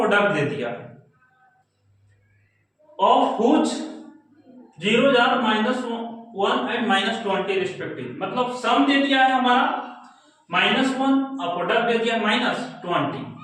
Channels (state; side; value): identical; both; correlation 1.00